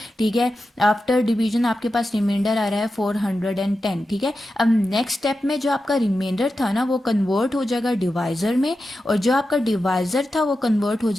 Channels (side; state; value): both; normal; correlation 0.91